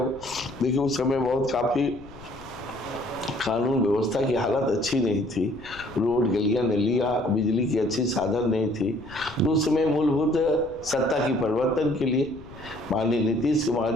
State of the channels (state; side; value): noise; left; rumble, 19 dB below the sound